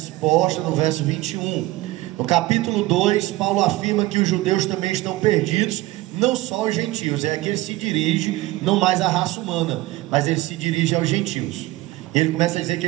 no verso 21. No capítulo 2, Paulo afirma que os judeus também estão perdidos, não só os gentios. É que ele se dirige não mais à raça humana, mas ele se dirige aos gentios. Ele começa a dizer que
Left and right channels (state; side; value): quieter; left; 18.2 dB